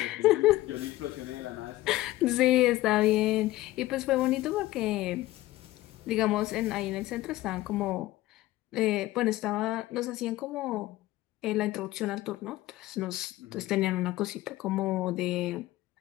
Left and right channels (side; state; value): right; quieter; 17.0 dB